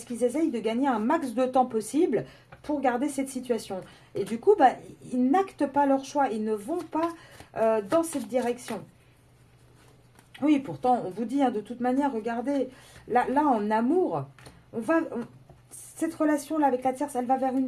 qu'ils essayent de gagner un max de temps possible pour garder cette situation. Et du coup, bah, ils n'actent pas leur choix, ils ne vont pas dans cette direction. Oui, pourtant, on vous dit, hein, de toute manière, regardez, là en amour, cette relation-là avec la tierce, elle va vers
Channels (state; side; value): identical; both; correlation 1.00